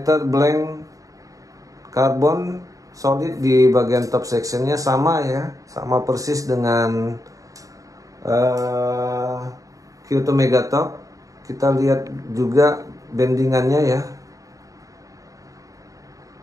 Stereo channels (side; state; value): left; late; 0.16 ms